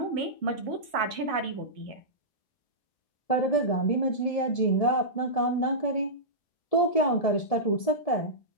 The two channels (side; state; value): right; late; 1.7 ms